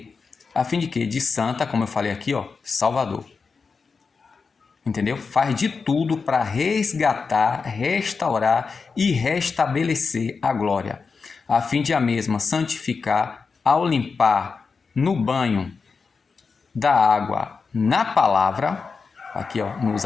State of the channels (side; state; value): right; quieter; 4.9 dB